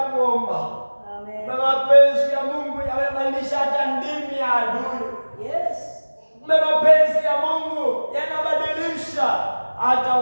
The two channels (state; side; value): inverted; both; correlation -1.00